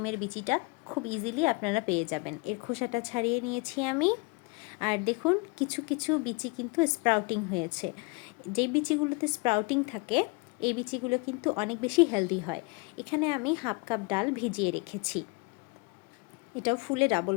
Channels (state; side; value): quieter; right; 28.2 dB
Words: বিচিটা খুব ইজিলি আপনারা পেয়ে যাবেন। এর খোসাটা ছাড়িয়ে নিয়েছি আমি। আর দেখুন, কিছু কিছু বিচি কিন্তু স্প্রাউটিং হয়েছে। যেই বিচিগুলোতে স্প্রাউটিং থাকে, এই বিচিগুলো কিন্তু অনেক বেশি হেলদি হয়। এখানে আমি হাফ কাপ ডাল ভিজিয়ে রেখেছি, এটাও ফুলে ডাবল